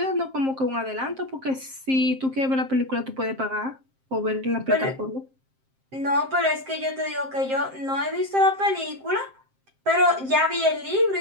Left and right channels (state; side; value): late; left; 7.6 ms